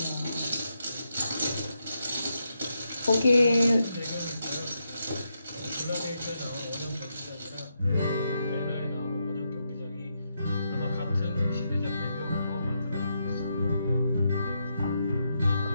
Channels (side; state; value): both; inverted; correlation -0.82